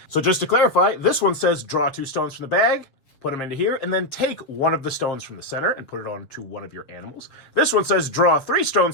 So just to clarify, this one says draw 2 stones from the bag, put them into here, and then take one of the stones from the center and put it onto one of your animals. This one says draw 3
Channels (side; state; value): right; late; 6.4 ms